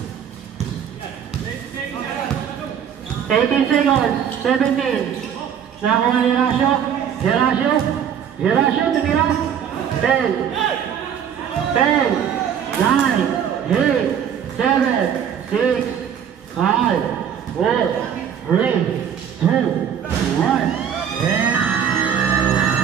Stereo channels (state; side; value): quieter; left; 8.5 dB